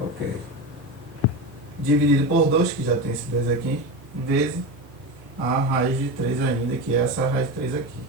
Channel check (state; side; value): normal; both; correlation 0.21